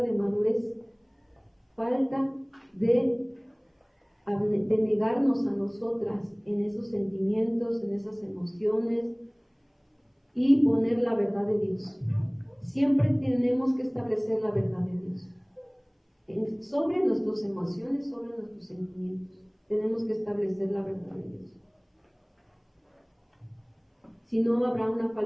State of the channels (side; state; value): both; identical; correlation 1.00